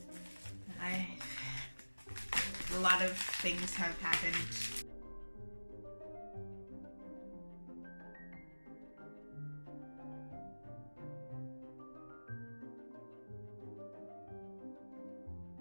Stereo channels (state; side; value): inverted; both; correlation -1.00